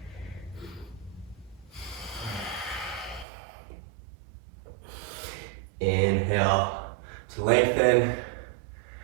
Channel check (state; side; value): drops out; left; at 3.2 s